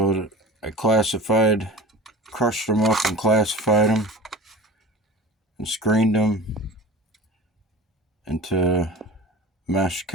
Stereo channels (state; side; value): normal; both; correlation 0.35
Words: I crushed them up and classified them and screened them into mesh